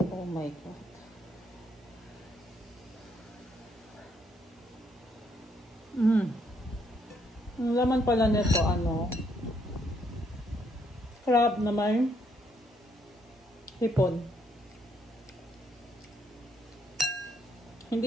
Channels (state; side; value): normal; both; correlation 0.72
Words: Oh my God. Ang laman pala nito, crab na may hipon.